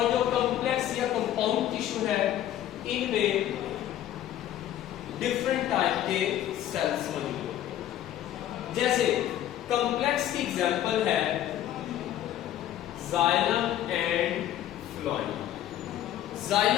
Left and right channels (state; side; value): quieter; right; 12.1 dB